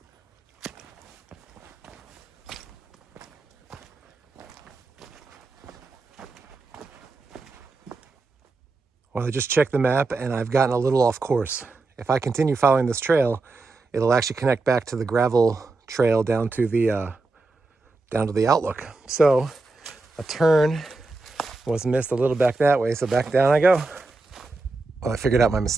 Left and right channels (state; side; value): quieter; left; 3.5 dB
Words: Well, I just checked the map and I've gotten a little off course. If I continue following this trail, it'll actually connect back to the gravel trail down to the Outlook. So a turn was missed a little back that way, so back down I go. Well, I figured out my